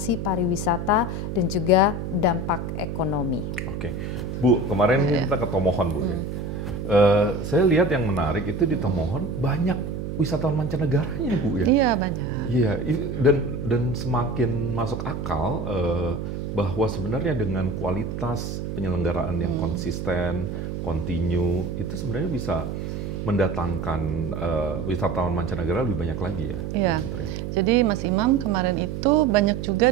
pariwisata dan juga dampak ekonomi. Oke, Bu, kemarin kita ke Tomohon, Bu. Saya lihat yang menarik itu di Tomohon banyak wisatawan mancanegaranya, Bu, ya. Iya, banyak. Iya, dan semakin masuk akal bahwa sebenarnya dengan kualitas penyelenggaraan yang konsisten, kontinu, itu sebenarnya bisa mendatangkan wisatawan mancanegara lebih banyak lagi ya. Iya. Jadi Mas Imam, kemarin itu banyak juga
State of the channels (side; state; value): right; noise; hum, 5 dB below the sound